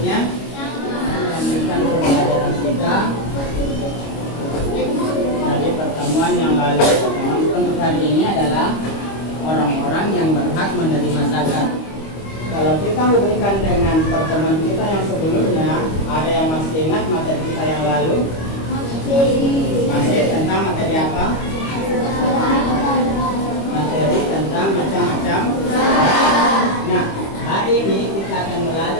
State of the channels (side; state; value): right; late; 25 ms